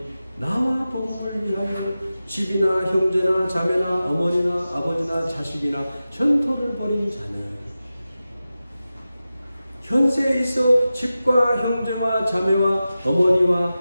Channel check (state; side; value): inverted; both; correlation -0.94